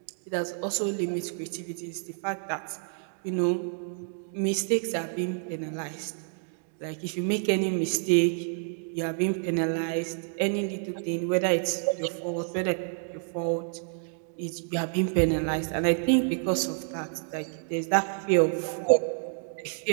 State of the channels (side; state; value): left; silent; 59 dB below the other